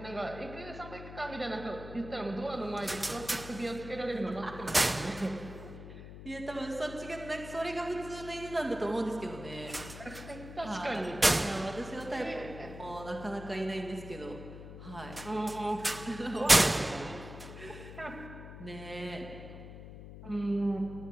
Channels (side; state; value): left; noise; hum, 12 dB below the sound